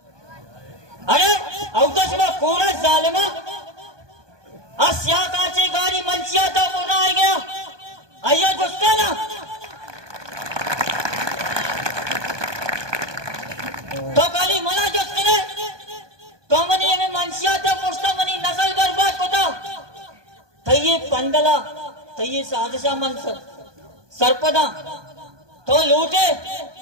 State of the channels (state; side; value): late; left; 1.2 ms